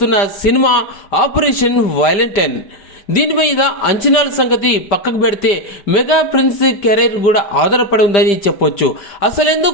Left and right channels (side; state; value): right; late; 5.1 ms